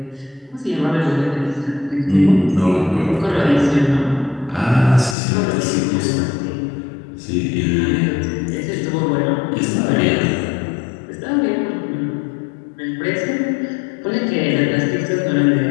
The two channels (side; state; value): right; drops out; at 5.2 s